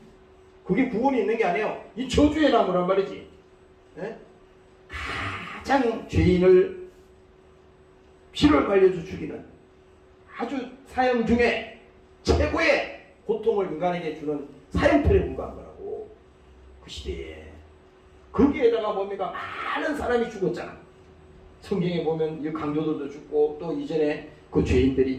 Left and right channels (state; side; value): identical; both; correlation 1.00